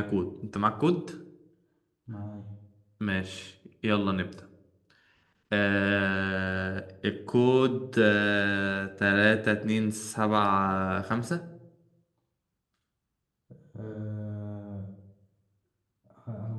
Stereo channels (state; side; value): identical; both; correlation 1.00